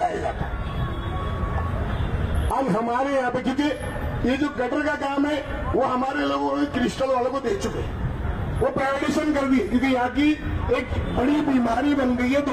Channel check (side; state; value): both; identical; correlation 1.00